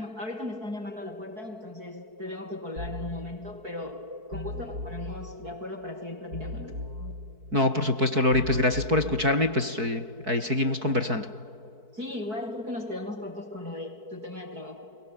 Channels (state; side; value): late; left; 4.6 ms